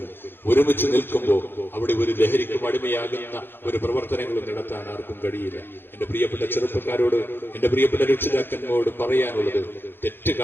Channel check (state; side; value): late; right; 0.10 ms